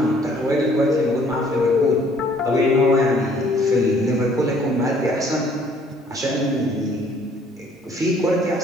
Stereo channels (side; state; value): both; normal; correlation 0.60